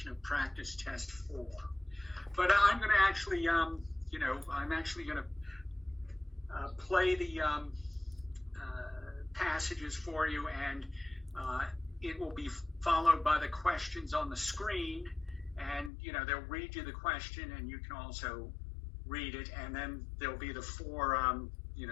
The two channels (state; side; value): drops out; right; at 15.9 s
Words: of practice test 4. But I'm going to actually, I'm actually going to play the passages for you, and it will be followed by the questions on the screen. And, they'll read you the question, and you can also read it. And then there'll be the 4,